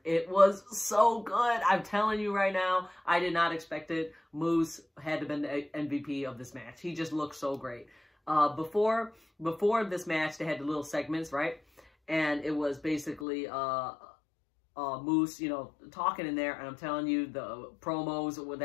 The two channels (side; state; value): right; drops out; at 13.2 s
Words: It was so good. I'm telling you right now, I did not expect it. Moose had to been the MVP of this match. He just looked so great. Before this match, they had the little segments, right? And it was basically Moose, talking in there, and I'm telling you, the promos